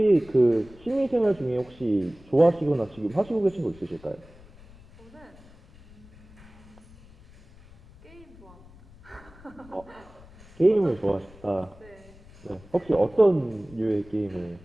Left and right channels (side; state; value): left; noise; rumble, 23 dB below the sound